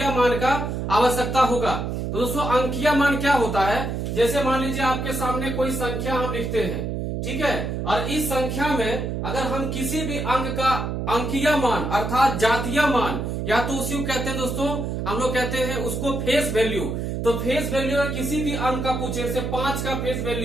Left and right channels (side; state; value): right; noise; hum, 3 dB below the sound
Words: मान का आवश्यकता होगा। तो दोस्तों, अंकीय मान क्या होता है, जैसे मान लीजिए आपके सामने कोई संख्या हम लिखते हैं, ठीक है, और इस संख्या में अगर हम किसी भी अंक का अंकीय मान अर्थात जातीय मान, या तो उसी को कहते हैं दोस्तों, हम लोग कहते हैं उसको फेस वैल्यू। तो फेस वैल्यू अगर किसी भी अंक का पूछे, जैसे 5 का फेस